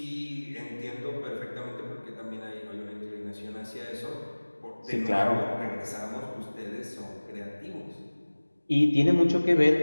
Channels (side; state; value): both; inverted; correlation -1.00